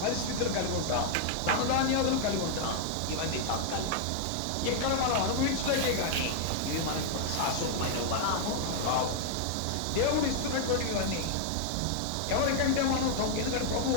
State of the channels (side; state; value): both; different; correlation -0.01